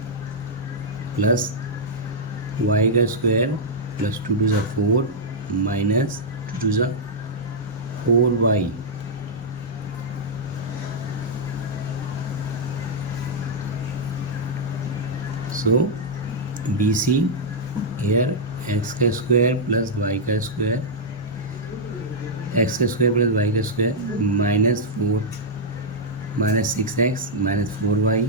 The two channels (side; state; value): both; normal; correlation -0.07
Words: plus y का square plus 2 2 4 minus 2 2 4y so BC here x का स्क्वायर प्लस y का स्क्वायर एक्स का स्क्वायर प्लस वाई का square minus 4 minus 6x minus 4y